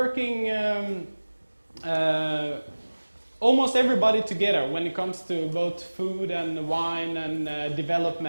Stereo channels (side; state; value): both; inverted; correlation -1.00